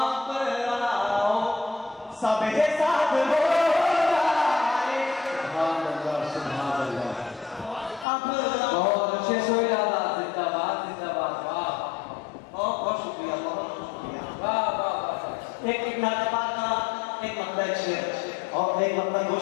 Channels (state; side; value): drops out; right; at 8.1 s